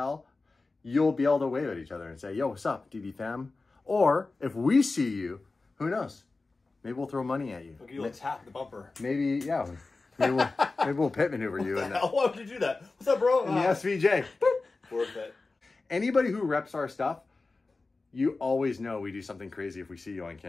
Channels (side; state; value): right; quieter; 3.6 dB